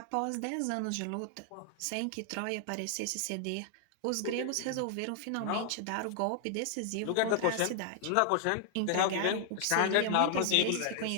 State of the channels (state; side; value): different; both; correlation 0.00